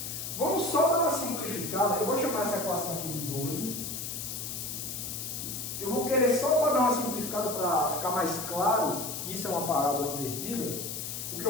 Vamos só dar uma simplificada. Eu vou chamar essa equação aqui de 12. Eu vou querer só para dar uma simplificada para ficar mais claro que isso é uma parábola invertida. O que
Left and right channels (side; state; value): left; noise; hiss, 5 dB below the sound